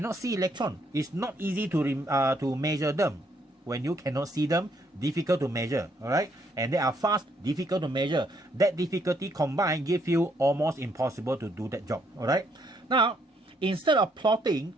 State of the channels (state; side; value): normal; both; correlation 0.71